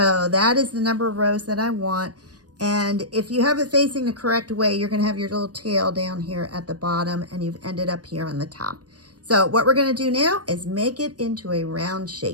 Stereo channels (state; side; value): late; left; 0.68 ms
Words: that is the number of rows that I want. And if you have it facing the correct way, you're going to have your little tail down here at the bottom, and you've ended up here on the top. So what we're going to do now is make it into a round